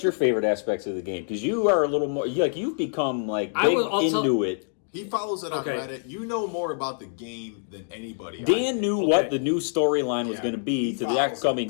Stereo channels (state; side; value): silent; right; digital silence